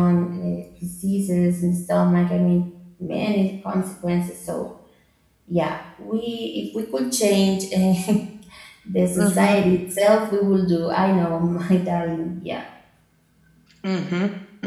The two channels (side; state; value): both; identical; correlation 1.00